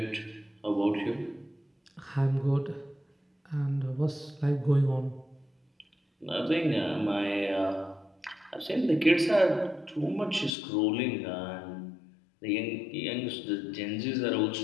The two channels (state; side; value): drops out; right; at 10.5 s